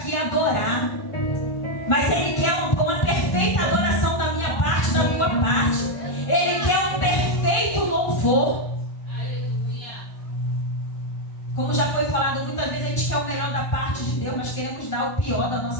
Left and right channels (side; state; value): right; late; 1.5 ms